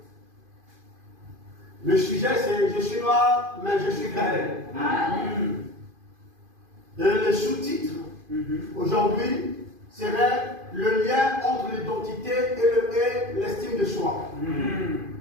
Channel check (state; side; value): late; left; 2.5 ms